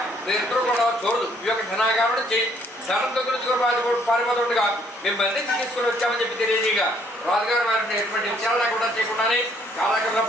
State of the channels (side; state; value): both; normal; correlation 0.65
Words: వీరిద్దరూ కూడా చోరుదు ఈ యొక్క ధనాగారుడు నుంచి ధనంతో గురించి పారిపోతుండగా మేము బంధించి తీసుకుని వచ్చామని చెప్పి తెలియజేయగా రాజుగారు వారిని ఎటువంటి విచారణ కూడా చేయకుండానే కాలక్రమంలో